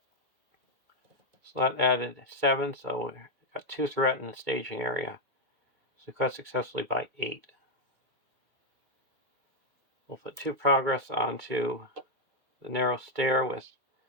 So that added 7, so we got 2 threat in the staging area. So cut successfully by 8. We'll put 2 progress onto the narrow stair with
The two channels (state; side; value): late; left; 2.2 ms